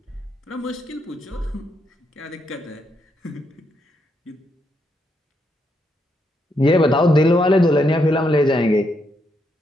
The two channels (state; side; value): normal; both; correlation 0.78